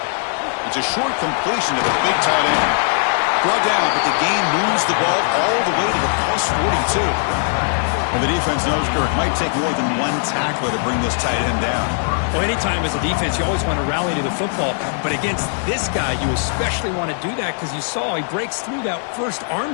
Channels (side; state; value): right; silent; digital silence